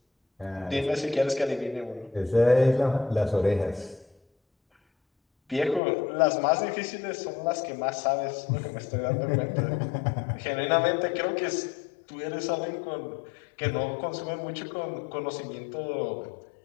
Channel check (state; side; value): drops out; right; at 5.8 s